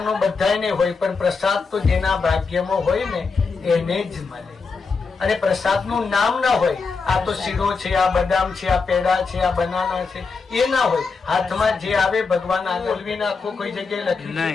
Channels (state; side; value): quieter; right; 4.7 dB